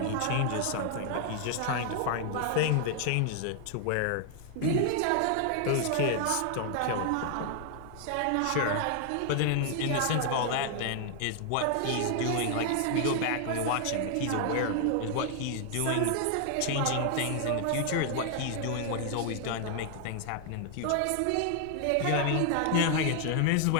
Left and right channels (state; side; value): different; both; correlation 0.00